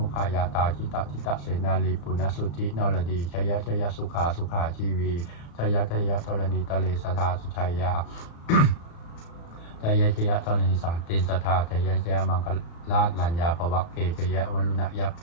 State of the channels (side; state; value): right; late; 35 ms